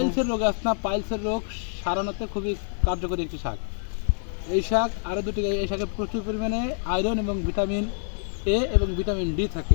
রোগ আছে না, পাইলসের রোগ সারানোতে খুবই কার্যকরী একটি শাক। এই শাক আরও দুটি, এই শাকে প্রচুর পরিমাণে আয়রন এবং ভিটামিন এ এবং ভিটামিন ডি থাকে।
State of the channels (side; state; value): right; silent; digital silence